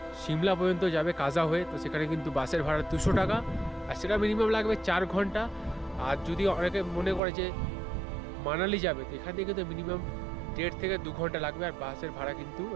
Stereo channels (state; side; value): drops out; left; at 7.2 s